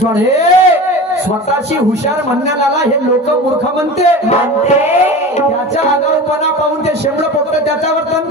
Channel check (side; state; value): both; normal; correlation 0.33